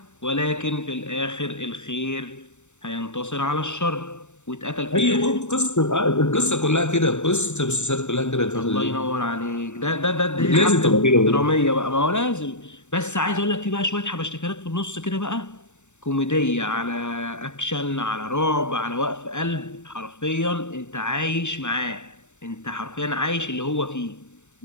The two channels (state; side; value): late; right; 0.84 ms